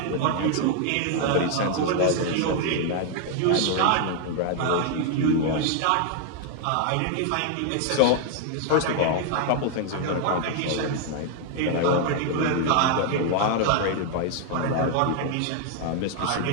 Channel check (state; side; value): different; both; correlation 0.00